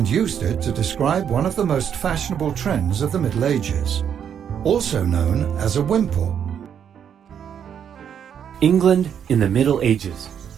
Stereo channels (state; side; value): quieter; left; 8.5 dB